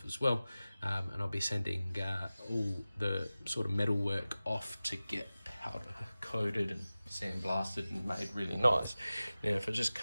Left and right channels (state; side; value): inverted; both; correlation -0.96